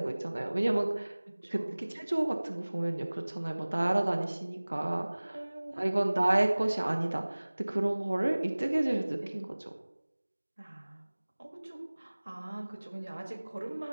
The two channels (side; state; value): both; inverted; correlation -1.00